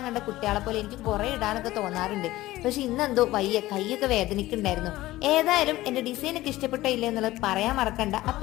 കണ്ട കുട്ടികളെ പോലെ എനിക്ക് കുറെ ഇടാനൊക്കെ തോന്നാറുണ്ട്. പക്ഷെ ഇന്നെന്തോ വയ്യ, കൈയൊക്കെ വേദനിക്കുന്നുണ്ടായിരുന്നു. ഏതായാലും എന്റെ ഡിസൈനൊക്കെ ഇഷ്ടപ്പെട്ടോ ഇല്ല എന്നുള്ളത് പറയാൻ മറക്കണ്ട.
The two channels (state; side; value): quieter; right; 16.9 dB